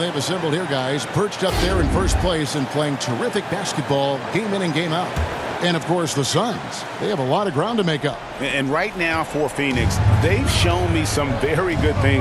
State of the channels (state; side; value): identical; both; correlation 1.00